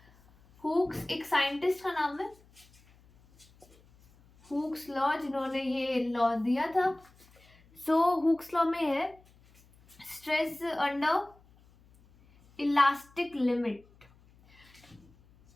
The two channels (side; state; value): left; noise; hum, 28 dB below the sound